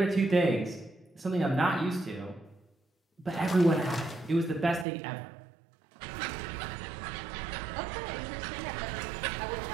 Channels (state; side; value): drops out; left; at 4.9 s